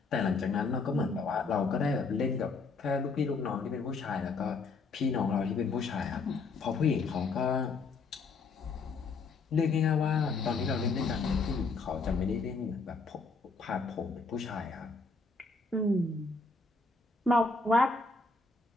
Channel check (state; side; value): quieter; right; 4.1 dB